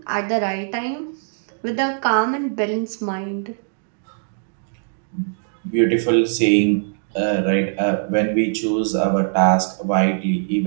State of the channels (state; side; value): silent; left; digital silence